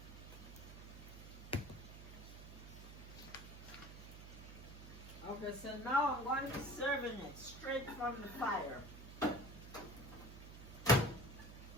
Okay, so now I'm going to be serving it straight from the fire.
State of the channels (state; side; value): noise; right; hum, 13 dB below the sound